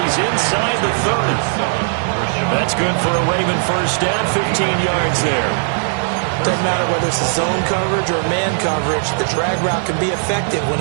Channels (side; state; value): left; silent; digital silence